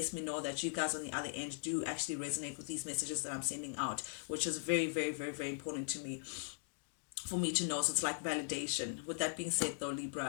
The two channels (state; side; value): silent; right; digital silence